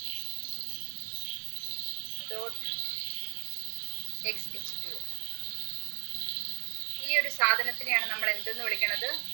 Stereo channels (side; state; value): left; silent; digital silence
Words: dot XH2O. ഈ ഒരു സാധനത്തിനെയാണ് നമ്മൾ എന്തെന്ന് വിളിക്കുന്നത്?